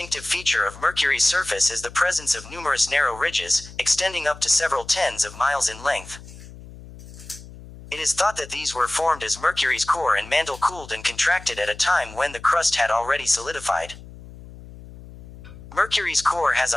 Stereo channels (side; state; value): left; noise; hum, 17 dB below the sound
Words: feature of Mercury's surface is the presence of numerous narrow ridges, extending up to several tens of miles in length. It is thought that these were formed as Mercury's core and mantle cooled and contracted at a time when the crust had already solidified. Mercury's core has